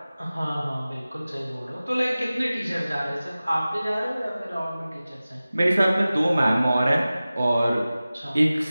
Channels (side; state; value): both; inverted; correlation -0.97